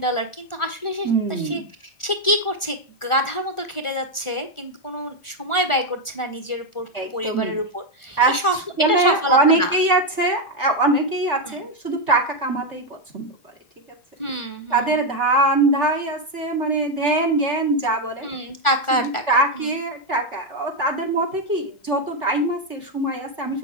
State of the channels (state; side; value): late; right; 1.4 ms